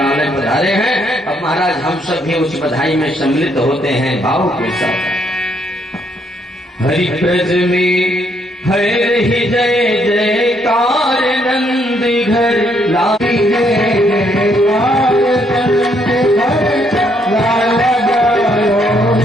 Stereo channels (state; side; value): normal; both; correlation 0.71